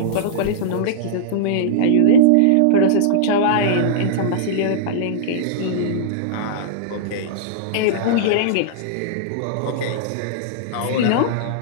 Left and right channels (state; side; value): different; both; correlation -0.02